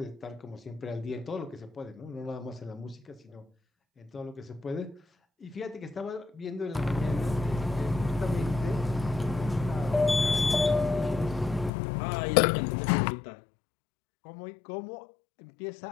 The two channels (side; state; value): right; drops out; at 11.7 s